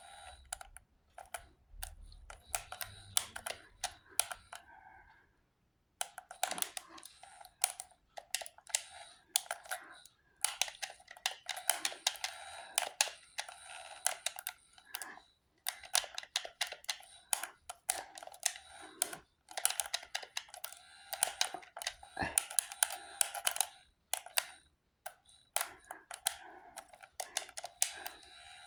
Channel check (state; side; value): identical; both; correlation 1.00